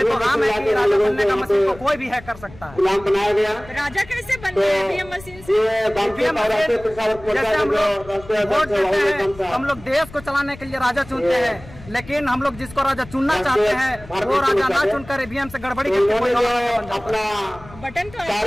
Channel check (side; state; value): left; noise; rumble, 19 dB below the sound